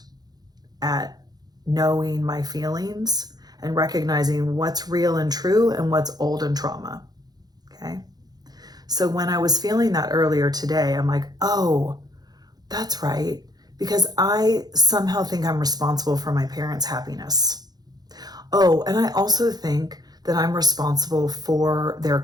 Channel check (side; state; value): left; late; 0.19 ms